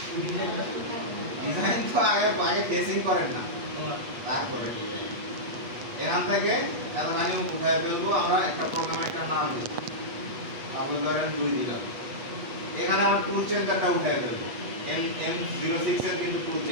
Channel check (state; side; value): late; left; 8.2 ms